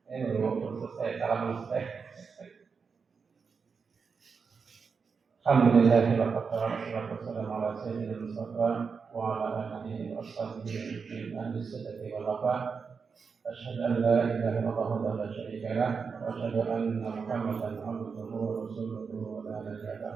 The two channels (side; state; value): left; quieter; 5.5 dB